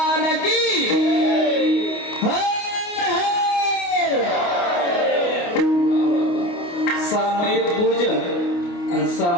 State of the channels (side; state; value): right; late; 28 ms